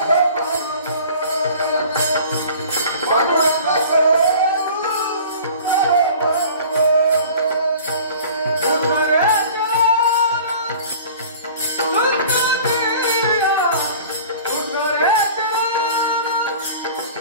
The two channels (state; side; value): inverted; both; correlation -0.45